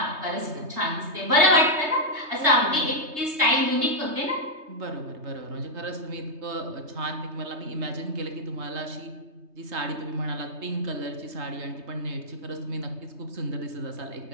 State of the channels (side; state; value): left; late; 3.2 ms